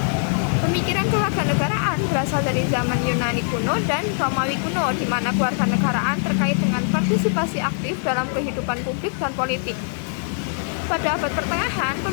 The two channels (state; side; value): silent; right; digital silence